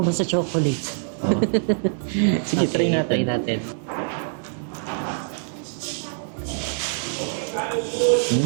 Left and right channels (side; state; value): left; silent; digital silence